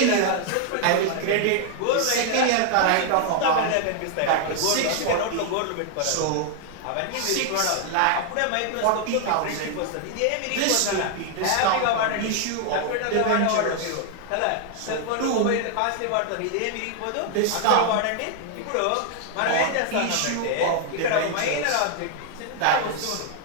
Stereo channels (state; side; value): different; both; correlation 0.00